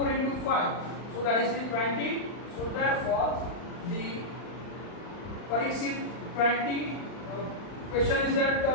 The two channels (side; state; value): right; late; 39 ms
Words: into 5. So that is the 20. So therefore the Parikshit 20 question is that